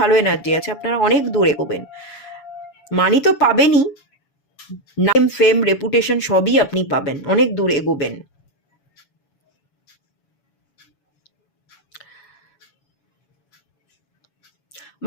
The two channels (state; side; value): late; right; 7.1 ms